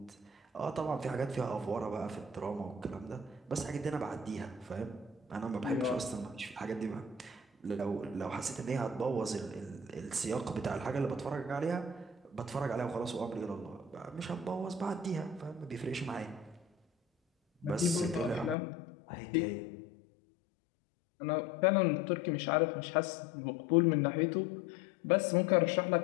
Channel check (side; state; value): right; drops out; at 18.6 s